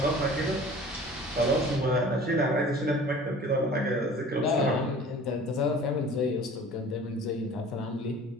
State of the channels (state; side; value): normal; both; correlation 0.45